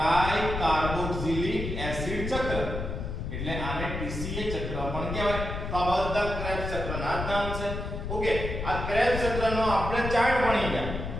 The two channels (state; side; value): noise; left; rumble, 5 dB below the sound